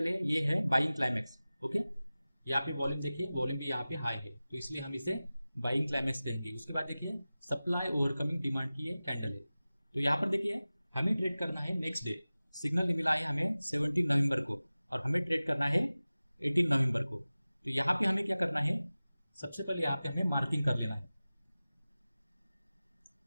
है ये है बाइंग क्लाइमेक्स। ओके, यहाँ पे वॉल्यूम देखिए, वॉल्यूम भी यहाँ पे हाई है, तो इसलिए हम इसे बाइंग क्लाइमेक्स कहेंगे। उसके बाद देखिए सप्लाई ओवरकमिंग डिमांड की ये कैंडल है। तो यहाँ पर देखिए हमें ट्रेड करना है नेक्स्ट डे, सिग्नल मिला है हमें 17 नवंबर को, और हमें ट्रेड करना है 18 नवंबर को। तो यहाँ पे हमें क्या करना है, सबसे पहले यहाँ पे हमें मार्किंग कर लेना है।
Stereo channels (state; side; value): inverted; both; correlation -0.97